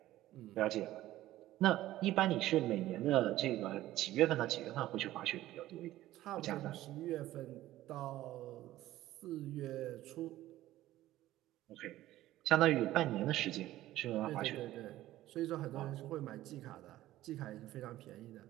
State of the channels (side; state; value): left; quieter; 15.0 dB